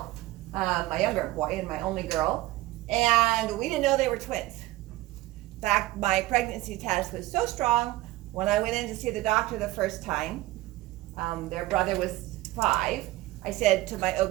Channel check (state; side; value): quieter; left; 17.9 dB